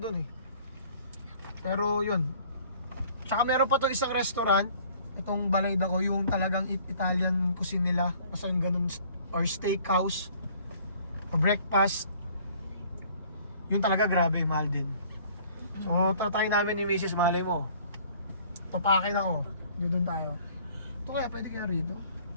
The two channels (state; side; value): inverted; both; correlation -0.54